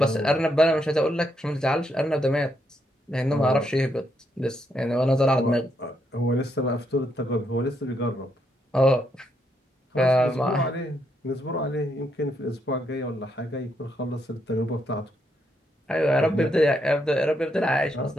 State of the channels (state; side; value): normal; both; correlation 0.77